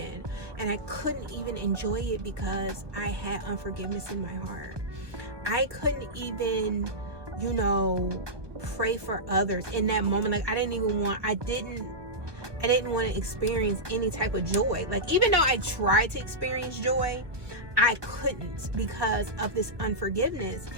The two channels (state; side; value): late; left; 1.4 ms